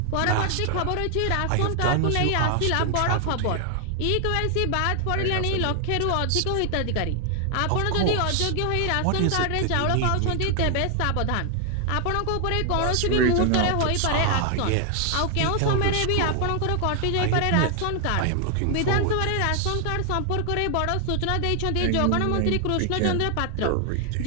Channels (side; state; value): both; different; correlation 0.00